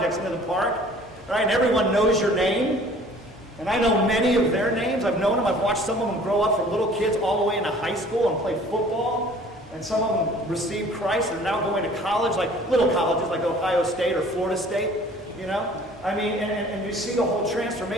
into the park, right, and everyone knows your name, and I know many of their names. I've known them. I've watched some of them grow up from little kids all the way into high school and play football. And some of them received Christ and are now going to college, like little colleges like Ohio State or Florida State, you know? I mean, and you see the whole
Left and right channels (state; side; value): normal; both; correlation 0.51